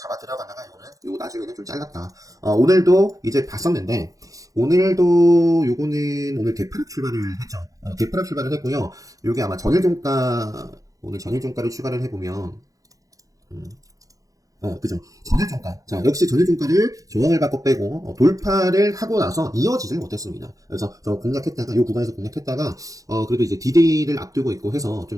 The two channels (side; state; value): left; late; 0.17 ms